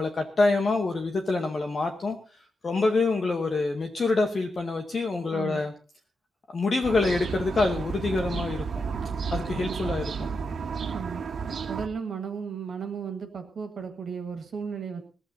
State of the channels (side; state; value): both; normal; correlation 0.86